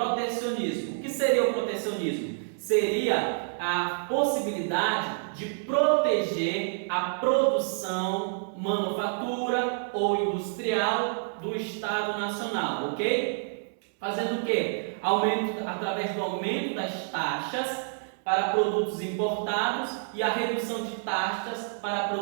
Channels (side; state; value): left; silent; 59 dB below the other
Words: O que seria o protecionismo? Seria a possibilidade de proteger a produção manufatura ou industrial do Estado nacional, ok? Fazendo o quê? Através do aumento das taxas para produtos importados e a redução de taxas para